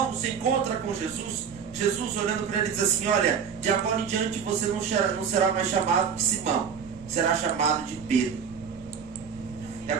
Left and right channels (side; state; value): left; quieter; 6.9 dB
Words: se encontra com Jesus, Jesus olhando para ele diz assim: olha, de agora em diante você não será mais chamado de Simão, será chamado de Pedro. E